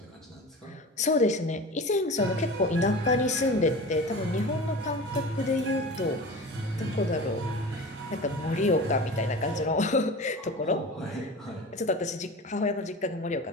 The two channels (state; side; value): normal; both; correlation 0.34